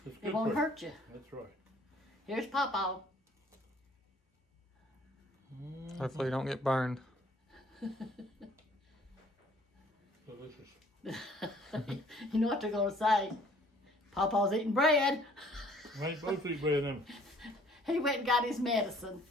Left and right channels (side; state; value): both; normal; correlation 0.57